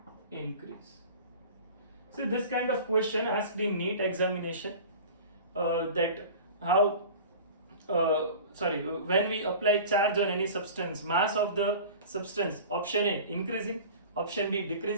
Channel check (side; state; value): both; inverted; correlation -0.38